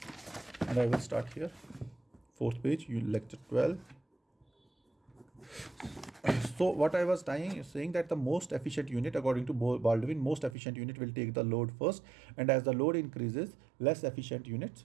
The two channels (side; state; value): left; drops out; at 10.6 s